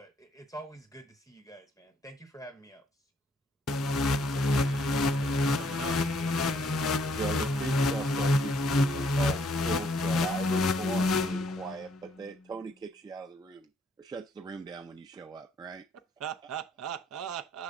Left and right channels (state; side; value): normal; both; correlation 0.68